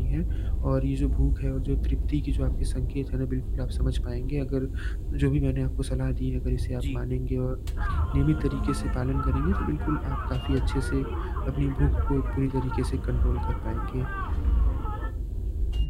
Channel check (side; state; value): both; identical; correlation 1.00